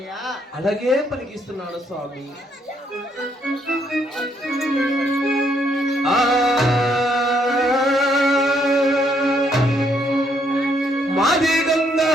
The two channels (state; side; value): normal; both; correlation 0.71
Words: అలాగే పలికిస్తున్నాడు స్వామి. మాది